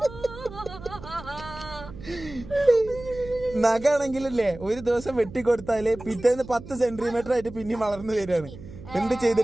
നഖാണെങ്കിലല്ലേ ഒരു ദിവസം വെട്ടിക്കൊടുത്താല് പിറ്റേന്ന് 10 സെന്റിമീറ്റർ ആയിട്ട് പിന്നെ വളർന്നു വരികയാണ്. എന്ത്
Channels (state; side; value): noise; right; hum, 15 dB below the sound